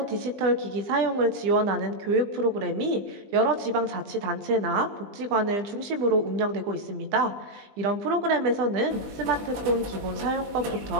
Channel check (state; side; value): late; left; 20 ms